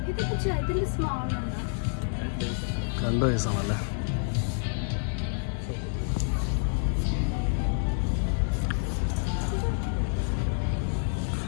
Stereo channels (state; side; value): silent; right; digital silence